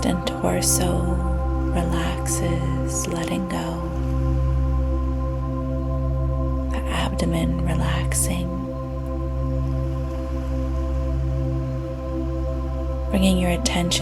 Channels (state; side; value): identical; both; correlation 1.00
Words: and torso relaxes, letting go. The abdomen relaxing. Bringing your